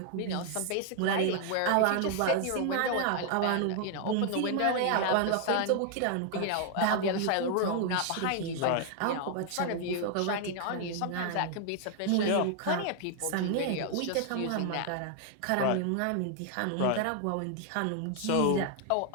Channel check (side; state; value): both; different; correlation 0.00